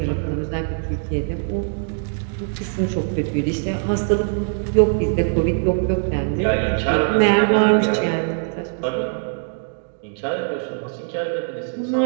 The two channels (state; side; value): silent; left; digital silence